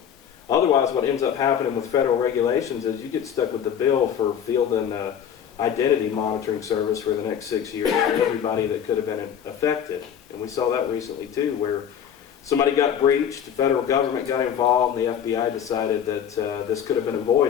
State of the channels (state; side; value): quieter; right; 8.7 dB